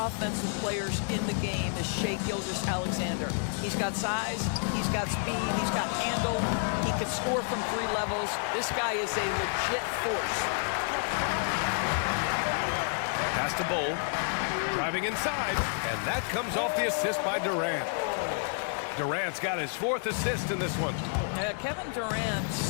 players in the game is Shai Gilgeous-Alexander. He's got size, he's got speed, he's got handle, he can score from 3 levels. This guy is a legit force. Pass to Bol, driving inside, and that comes off the assist by Durant. Durant's got his 4th assist in this one. Kevin Durant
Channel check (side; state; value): right; silent; 58 dB below the other